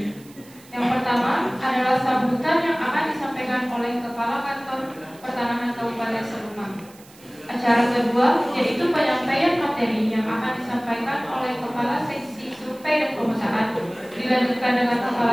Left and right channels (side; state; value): right; noise; hiss, 24 dB below the sound